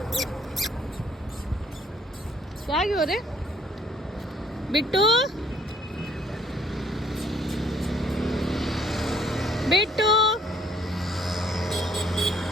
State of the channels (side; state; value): both; normal; correlation 0.63